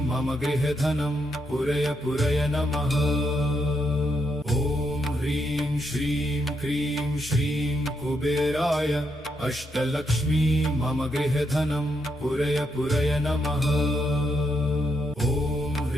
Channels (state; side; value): normal; both; correlation 0.79